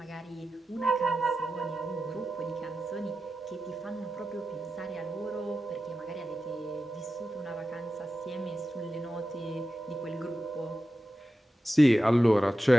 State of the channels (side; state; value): both; normal; correlation 0.92